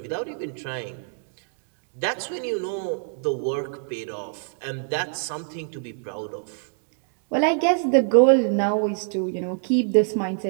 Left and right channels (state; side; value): silent; left; digital silence